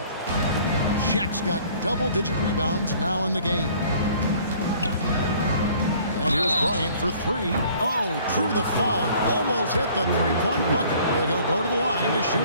Shaq's got double-digit rebounds now in the game. And here's Bryant for three. Oh, drew the foul and almost hit the three-point bucket. But he'll go to the line to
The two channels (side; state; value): both; inverted; correlation -0.54